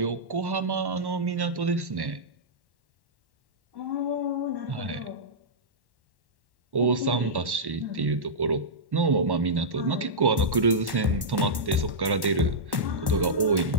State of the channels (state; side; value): late; left; 1.1 ms